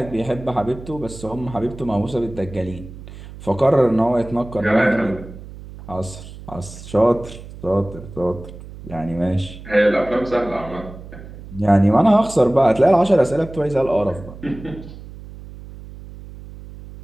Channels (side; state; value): right; noise; hum, 15 dB below the sound